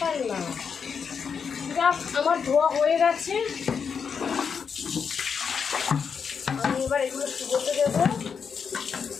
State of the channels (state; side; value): quieter; right; 6.3 dB